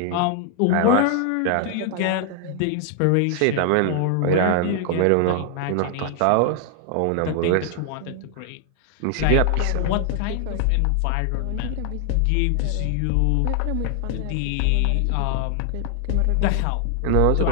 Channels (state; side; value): different; both; correlation 0.00